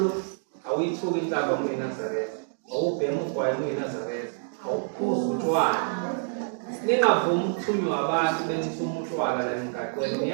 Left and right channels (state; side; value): silent; left; digital silence